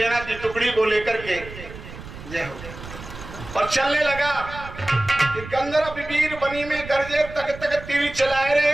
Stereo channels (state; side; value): noise; right; rumble, 14 dB below the sound